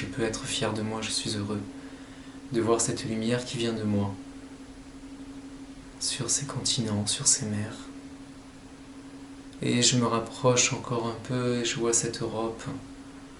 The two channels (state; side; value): identical; both; correlation 1.00